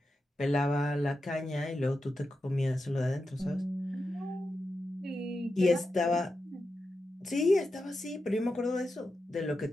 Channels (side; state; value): both; normal; correlation 0.89